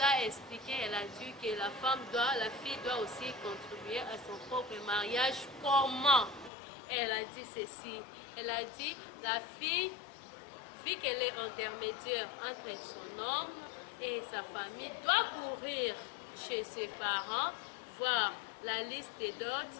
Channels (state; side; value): drops out; right; at 6.5 s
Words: expliqué, elle a dit que la fille doit aussi contribuer à son propre mariage. Comment? Elle a dit ceci, elle a dit la fille, vu qu'elle est intermédiaire entre son homme et sa famille, doit courir chez ses parents, voir la liste des dots.